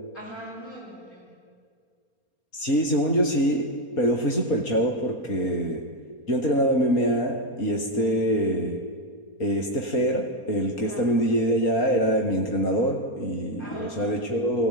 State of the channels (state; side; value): late; right; 4.3 ms